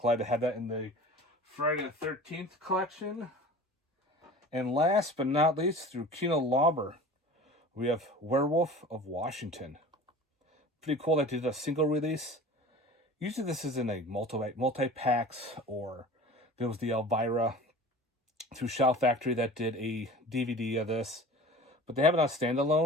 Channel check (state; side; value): normal; both; correlation 0.39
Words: to have that in the Friday the 13th collection. And last but not least, through Kino Lauber, we have Werewolf of Washington. Pretty cool that they did a single release. Usually this is in a multi-packs, or there was the Elvira through Shout Factory that did a DVD of this. But they have it on